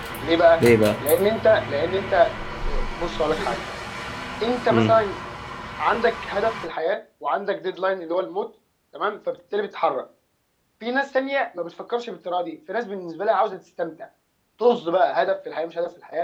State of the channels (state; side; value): identical; both; correlation 1.00